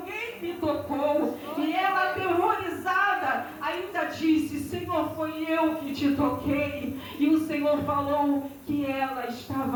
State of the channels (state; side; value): identical; both; correlation 1.00